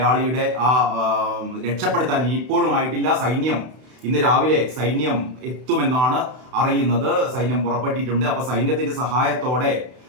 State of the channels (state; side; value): late; left; 32 ms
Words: രക്ഷപ്പെടുത്താൻ ഇപ്പോഴും ആയിട്ടില്ല. ഇന്ന് രാവിലെ സൈന്യം എത്തുമെന്നാണ് അറിയുന്നത്. സൈന്യം പുറപ്പെട്ടിട്ടുണ്ട്. അപ്പൊ സൈന്യത്തിന്റെ സഹായത്തോടെ